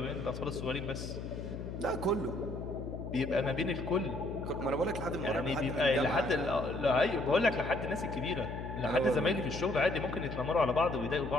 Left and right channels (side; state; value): left; noise; hum, 7 dB below the sound